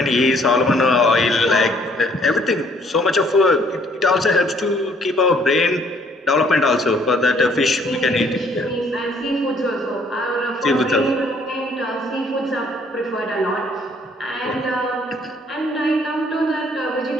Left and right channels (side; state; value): both; normal; correlation 0.63